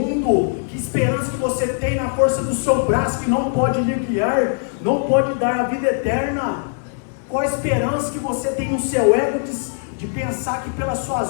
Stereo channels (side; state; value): right; silent; digital silence